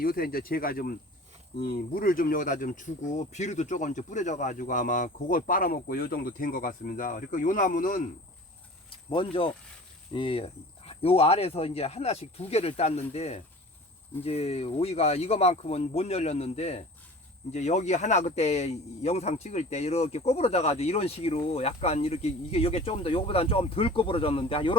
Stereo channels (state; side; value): normal; both; correlation 0.42